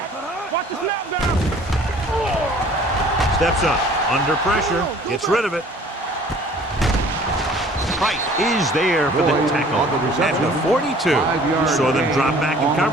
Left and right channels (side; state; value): both; normal; correlation 0.52